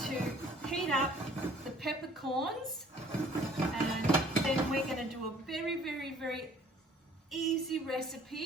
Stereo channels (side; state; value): both; normal; correlation 0.55